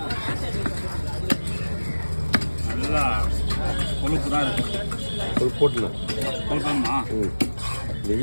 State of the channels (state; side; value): inverted; both; correlation -1.00